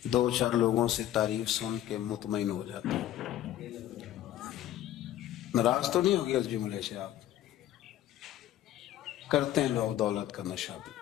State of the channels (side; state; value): right; quieter; 12.6 dB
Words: دو چار لوگوں سے تعریف سن کے مطمئن ہو جاتا ہے۔ ناراض تو نہیں ہوگی اس جملے سے آپ؟ کرتے ہیں لوگ دولت کا نشہ